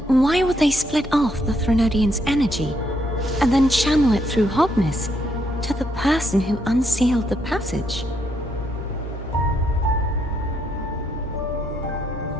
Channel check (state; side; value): normal; both; correlation 0.75